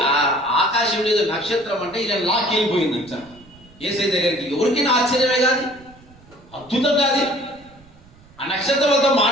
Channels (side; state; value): right; noise; rumble, 26 dB below the sound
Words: ఆ ఆకాశం మీద నక్షత్రం అంటే ఇలా లాక్కెళ్ళిపోయిందంట యేసయ్య దగ్గరికి. ఎవరికైనా ఆశ్చర్యమే కాదు, అద్భుతం కాదు. ఆ నక్షత్రంతో